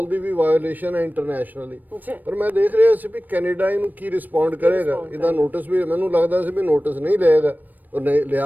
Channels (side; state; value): left; late; 0.087 ms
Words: ਦੀ ਵੀ ਵਾਇਓਲੇਸ਼ਨ ਹੈ ਇੰਟਰਨੈਸ਼ਨਲੀ। ਪਰ ਮੈਂ ਦੇਖ ਰਿਹਾ ਸੀ ਵੀ ਕੈਨੇਡਾ ਇਹਨੂੰ ਕੀ ਰਿਸਪੌਂਡ ਕਰੇਗਾ। ਇਹਦਾ ਨੋਟਿਸ ਵੀ ਮੈਨੂੰ ਲੱਗਦਾ ਸੀ ਵੀ ਨੋਟਿਸ ਨਹੀਂ ਲਏਗਾ ਔਰ ਨਹੀਂ